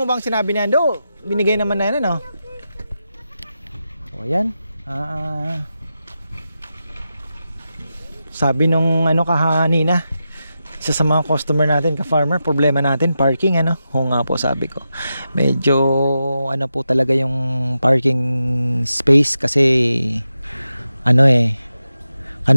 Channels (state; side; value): inverted; both; correlation -0.89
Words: bang sinabi ni Ando? Binigay naman na yan O ayan. Sabi nung kahanina, isa sa mga customer natin, ka-farmer, problema natin parking Oo nga po, sabi ko. Medyo po talaga yung parking space kasi